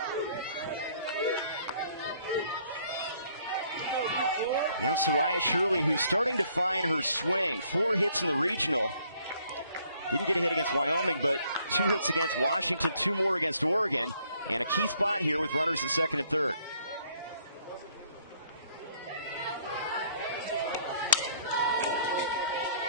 Now Soraya Shirley, who's starting to find her swing. 4 hits in the regional. Didn't get a hit against Wyoming, but 2 hits against Washington, 2 more against Oregon. And a key spot here with runners at second and third.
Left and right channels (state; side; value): inverted; both; correlation -0.64